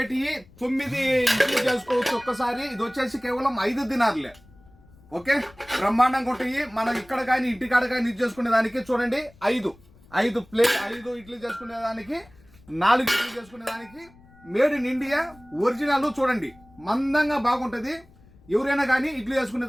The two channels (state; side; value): noise; left; rumble, 26 dB below the sound